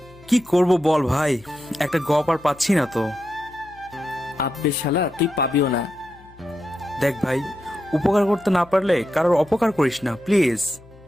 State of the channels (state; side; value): noise; left; hum, 24 dB below the sound